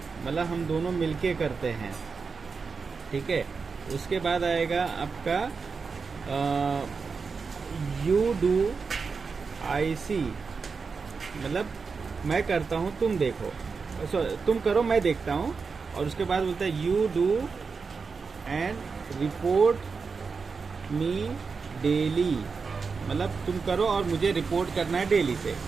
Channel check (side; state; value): left; quieter; 5.0 dB